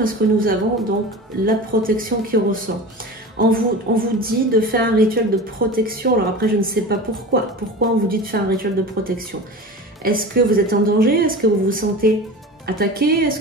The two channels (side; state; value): both; normal; correlation 0.33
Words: que nous avons donc la protection qui ressort. On vous dit de faire un rituel de protection. Alors après, je ne sais pas pourquoi. Pourquoi on vous dit de faire un rituel de protection? Est-ce que vous êtes en danger? Est-ce que vous vous sentez attaqué? Est-ce